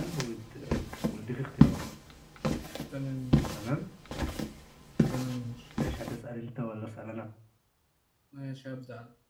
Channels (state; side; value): identical; both; correlation 1.00